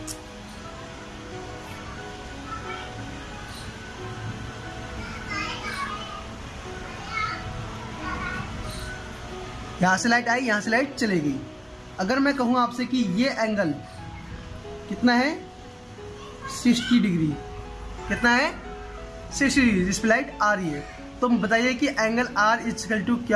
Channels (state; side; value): identical; both; correlation 1.00